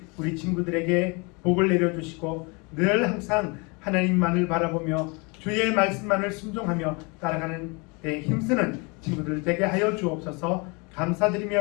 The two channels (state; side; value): quieter; right; 30.1 dB